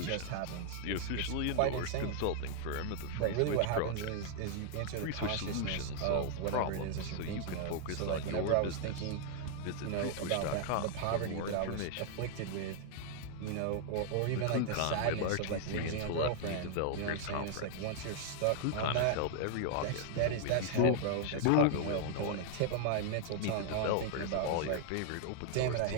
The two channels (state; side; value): different; both; correlation 0.00